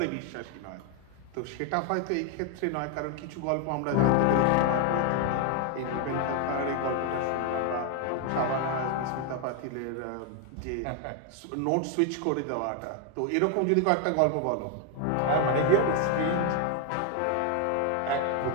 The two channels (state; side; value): different; both; correlation 0.01